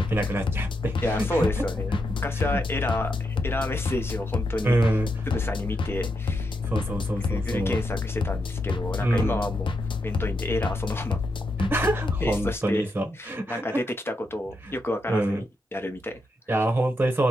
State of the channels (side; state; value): both; normal; correlation 0.83